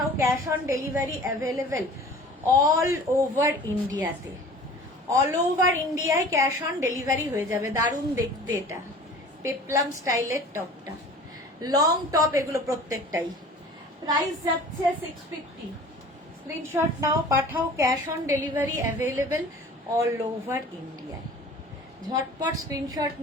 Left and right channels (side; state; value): both; normal; correlation 0.44